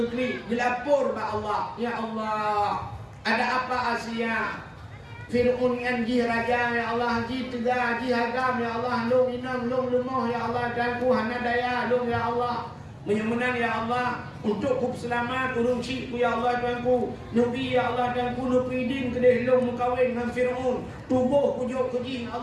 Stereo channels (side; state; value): both; identical; correlation 1.00